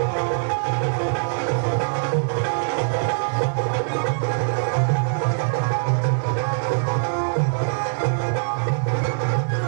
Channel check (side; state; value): left; silent; digital silence